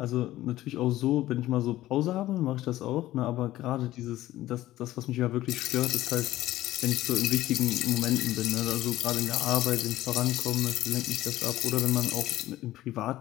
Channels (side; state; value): right; quieter; 15.3 dB